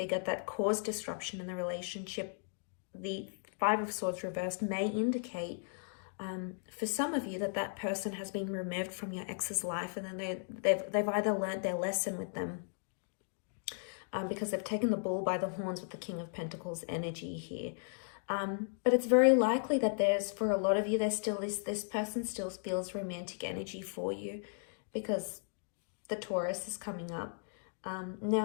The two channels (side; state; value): right; silent; digital silence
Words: that caused disruption in the relationship, the Five of Swords reversed may indicate for some of you that person has been removed from your ex's life, and then they've either learned their lesson with them, because they've taken the bull by the horns with the King of Pentacles energy here. But it's very likely that for a lot of you, there's still this person still feels romantic energy for you, because the Taurus is coming up.